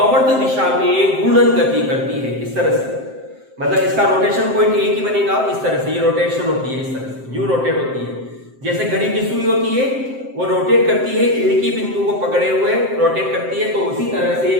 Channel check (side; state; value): left; late; 7.7 ms